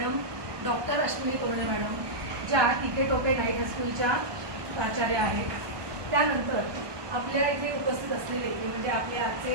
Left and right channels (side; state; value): left; late; 1.2 ms